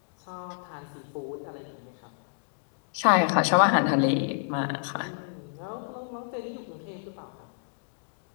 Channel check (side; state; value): right; silent; digital silence